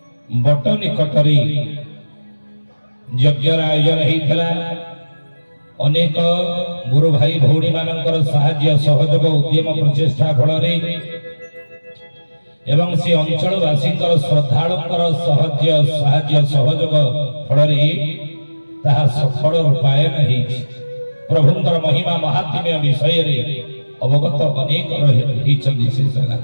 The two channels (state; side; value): inverted; both; correlation -1.00